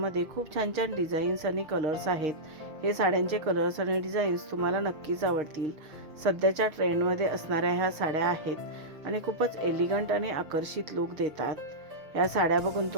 खूप छान छान डिझाईन्स आणि कलर्स आहेत. हे साड्यांचे कलर्स आणि डिझाईन्स तुम्हाला नक्कीच आवडतील. सध्याच्या ट्रेंडमध्ये असणाऱ्या ह्या साड्या आहेत आणि खूपच एलिगंट आणि आकर्षित लुक देतात. ह्या साड्या बघून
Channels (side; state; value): left; late; 6.5 ms